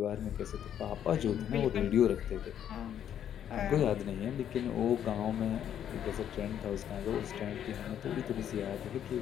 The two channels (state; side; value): quieter; right; 9.8 dB